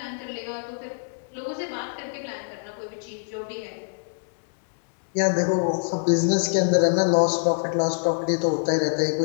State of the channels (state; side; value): silent; right; digital silence